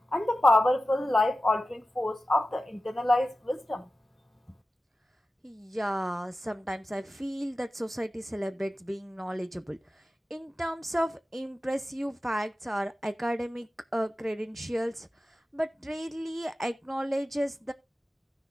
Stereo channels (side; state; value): both; normal; correlation 0.94